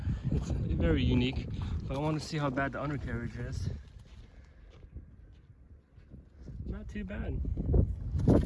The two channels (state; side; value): identical; both; correlation 1.00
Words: It's very unique. But I want to see how bad the undercarriage is. Not too bad.